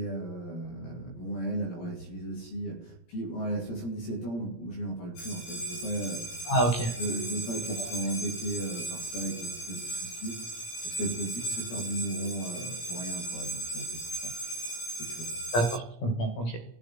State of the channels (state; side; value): late; right; 17 ms